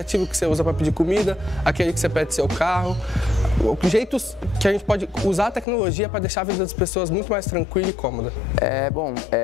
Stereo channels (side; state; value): right; drops out; at 5.7 s